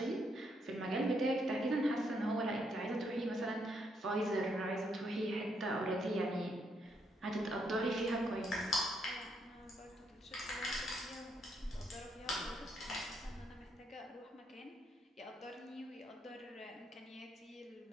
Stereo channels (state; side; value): normal; both; correlation 0.75